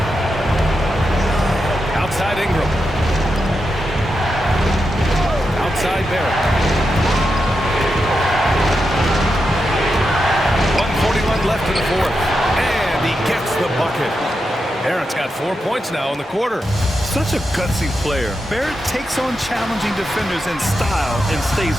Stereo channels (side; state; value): both; normal; correlation 0.87